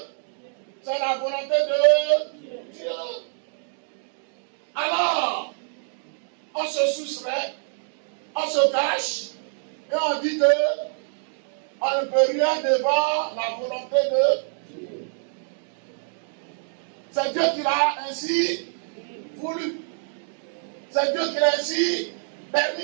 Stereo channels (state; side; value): silent; left; digital silence